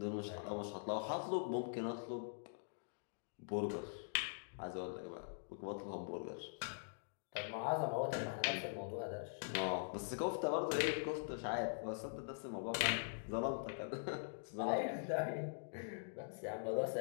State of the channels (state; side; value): silent; right; digital silence